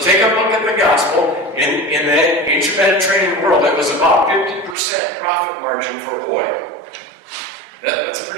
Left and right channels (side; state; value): left; drops out; at 4.8 s